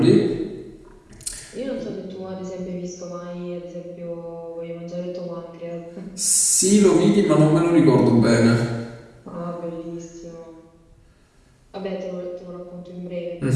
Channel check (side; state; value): both; identical; correlation 1.00